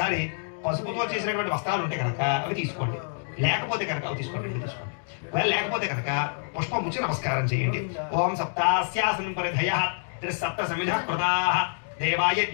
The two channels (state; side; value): silent; right; digital silence